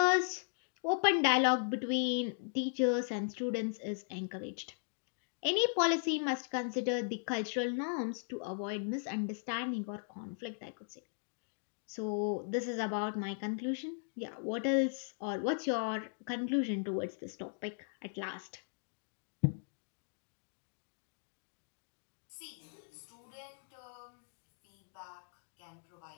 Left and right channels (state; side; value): silent; right; digital silence